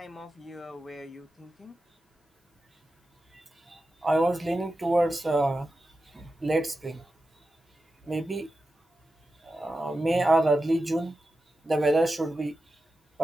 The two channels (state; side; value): normal; both; correlation 0.91